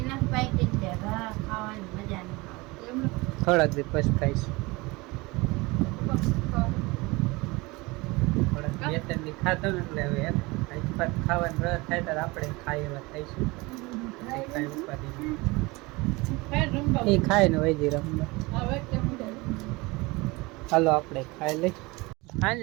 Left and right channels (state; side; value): quieter; left; 23.8 dB